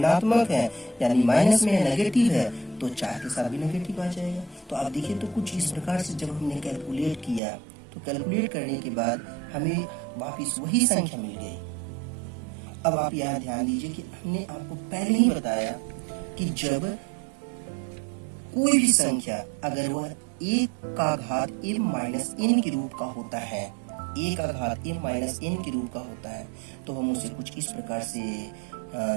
है, यानी माइनस में है, नेगेटिव है, तो 4 के साथ भी नेगेटिव आ जाएगा। तो आप देखिए तो कुछ इस प्रकार से जब हमने कैलकुलेट किया तो कैलकुलेट करने के बाद हमें वापिस वही संख्या मिल गई। अब आप यहाँ ध्यान दीजिए कि हमने आपको पहले ही बताया कि जब कोई भी संख्या अगर वह 1 का घात m माइनस n के रूप का होता है, 1 का घात m माइनस n के रूप का होता है, तो हम उसे कुछ इस प्रकार से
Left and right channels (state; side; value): drops out; left; at 7.4 s